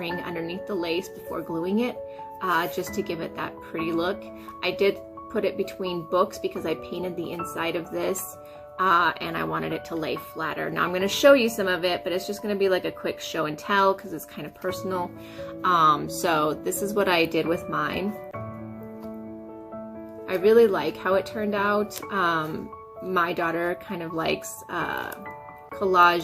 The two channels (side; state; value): both; identical; correlation 1.00